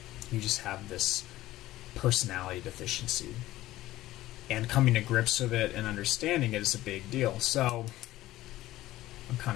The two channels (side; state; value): right; quieter; 16.0 dB